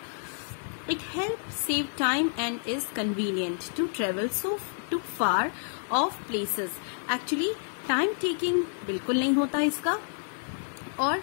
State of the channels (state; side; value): silent; right; digital silence